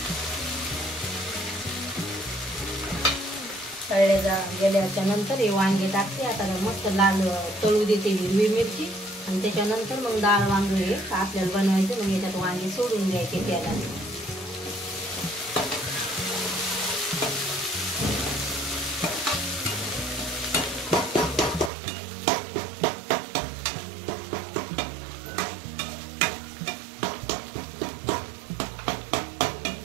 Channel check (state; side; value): drops out; left; at 21.7 s